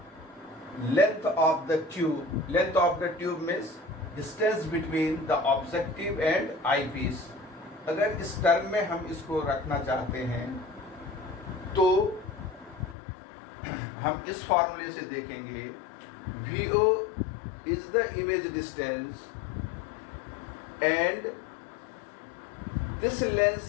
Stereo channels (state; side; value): drops out; right; at 13.0 s